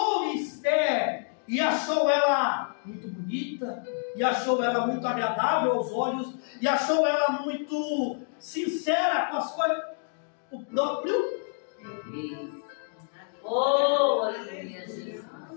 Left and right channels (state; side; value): silent; right; 59 dB below the other